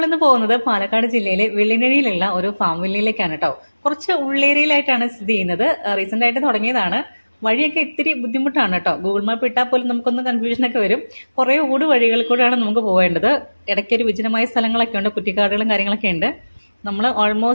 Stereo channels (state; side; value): inverted; both; correlation -1.00